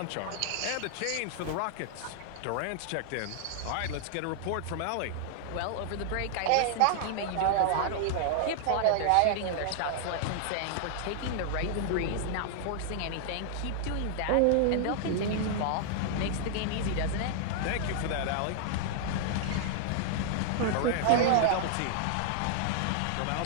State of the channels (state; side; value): different; both; correlation 0.00